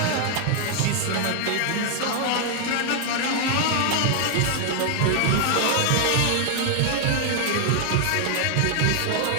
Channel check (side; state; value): both; different; correlation 0.00